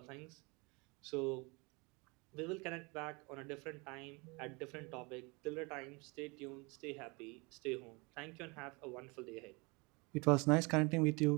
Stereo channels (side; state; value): left; quieter; 28.3 dB